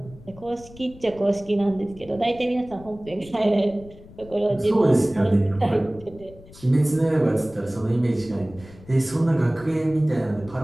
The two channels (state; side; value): noise; left; rumble, 21 dB below the sound